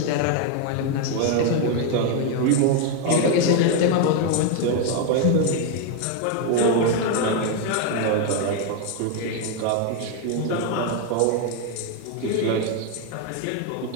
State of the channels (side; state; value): both; different; correlation 0.01